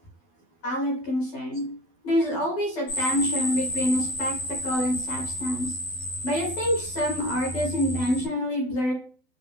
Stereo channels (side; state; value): right; late; 12 ms